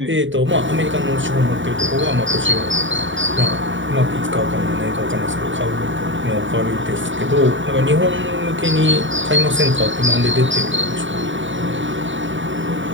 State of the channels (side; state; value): left; late; 0.55 ms